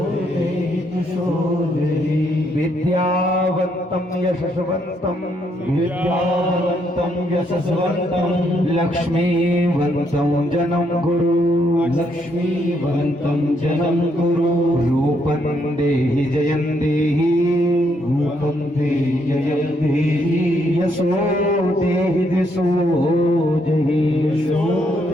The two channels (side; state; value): both; normal; correlation 0.74